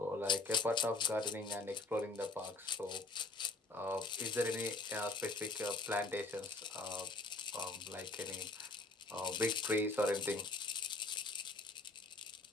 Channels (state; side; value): quieter; right; 3.2 dB